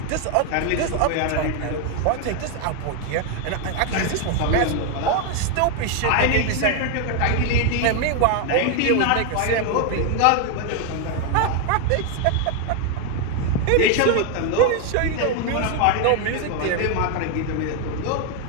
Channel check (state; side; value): different; both; correlation 0.01